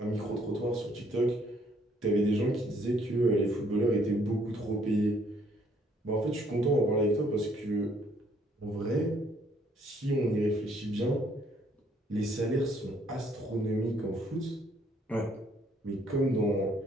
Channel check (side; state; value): both; normal; correlation 0.65